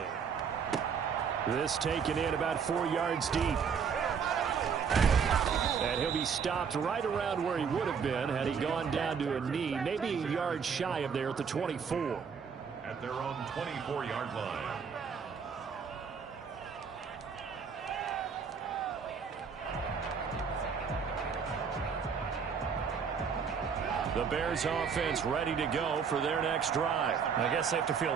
This taken in about 4 yards deep. And he'll be stopped right around where he would have been had he gone down to a knee, maybe a yard shy of there at the 24. At their own 24-yard line. The Bears offense ready to go for their next drive. I guess they have to feel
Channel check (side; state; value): left; quieter; 6.4 dB